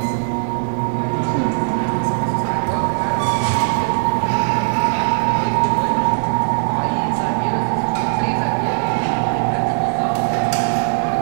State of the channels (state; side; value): silent; left; digital silence